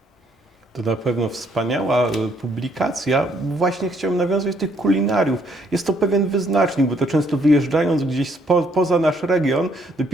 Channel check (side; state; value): both; normal; correlation 0.68